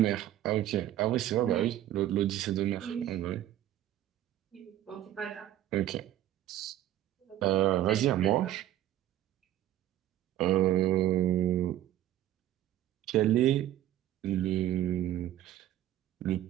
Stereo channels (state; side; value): quieter; left; 12.9 dB